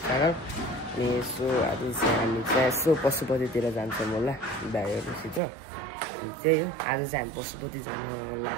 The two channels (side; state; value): left; drops out; at 5.4 s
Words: channel. So आज चाहिँ हामी चाहिँ यसो पशुपतितिर जान्छौँ होला दाइहरूसित। अनि त्यही हो, आज चाहिँ हामी पशुपति जानु